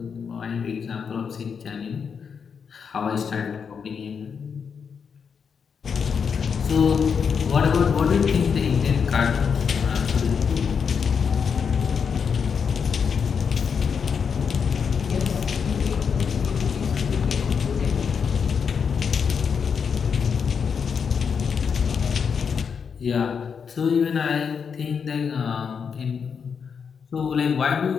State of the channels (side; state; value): right; quieter; 6.4 dB